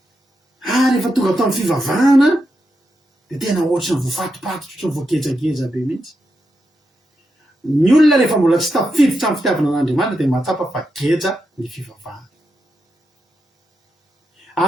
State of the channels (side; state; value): both; normal; correlation 0.85